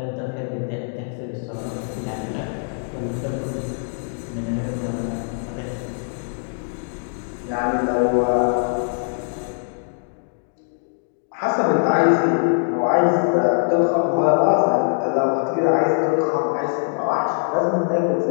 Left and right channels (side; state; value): right; silent; digital silence